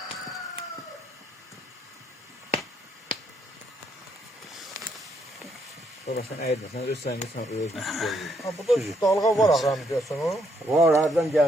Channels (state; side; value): normal; both; correlation 0.73